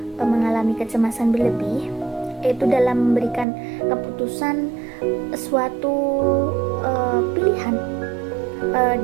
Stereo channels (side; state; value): left; drops out; at 3.5 s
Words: mengalami kecemasan berlebih itu dalam memberikan keputusan suatu pilihan,